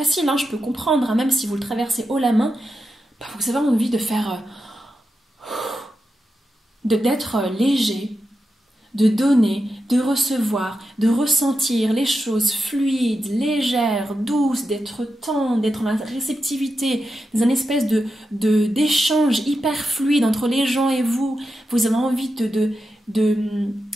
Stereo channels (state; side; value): normal; both; correlation 0.89